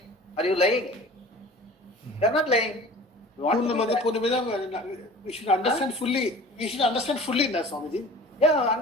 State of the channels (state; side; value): normal; both; correlation 0.43